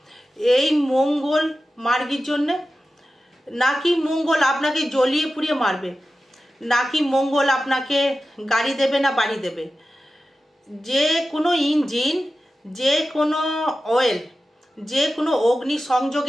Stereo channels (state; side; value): normal; both; correlation 0.94